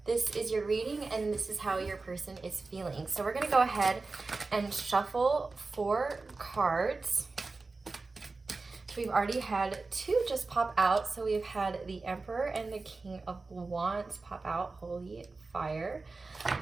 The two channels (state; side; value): quieter; left; 3.8 dB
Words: this is your reading and this is how your person is feeling. So we're going to go ahead and shuffle 4 cards. We've already had 2 just pop out. So we've had the Emperor and the King of Wands pop out. Holy fire.